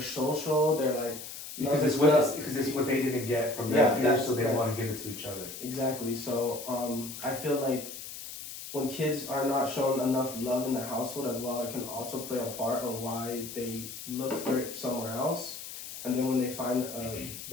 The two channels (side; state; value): left; noise; hiss, 10 dB below the sound